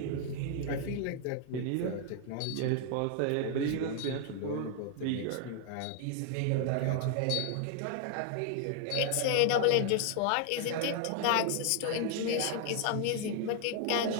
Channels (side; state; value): both; different; correlation 0.00